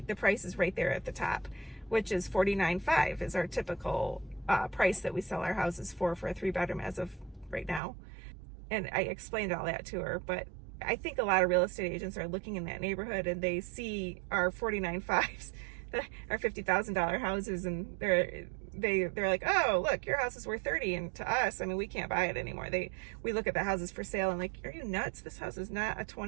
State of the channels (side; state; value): left; drops out; at 7.8 s